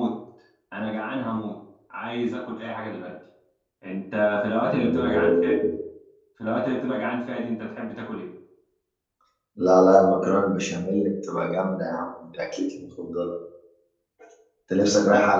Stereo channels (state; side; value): identical; both; correlation 1.00